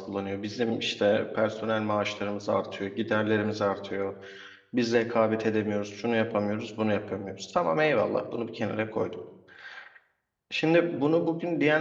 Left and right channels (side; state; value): both; identical; correlation 1.00